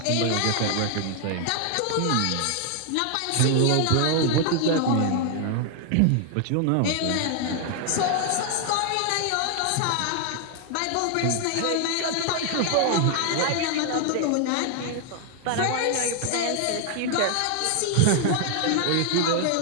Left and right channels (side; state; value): both; different; correlation 0.00